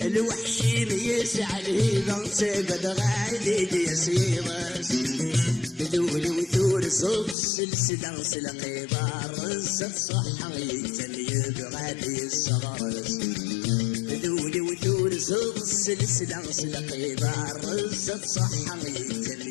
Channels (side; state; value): right; drops out; at 7.4 s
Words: الوحشي ميسع الهيبة تقبل غالي بيسيرس بدول وثور صوت سلسلة سلقي بارز الصحة يتليب غادي الصغرس بدول وثور صوت سلسلة سلقي بارز الصحة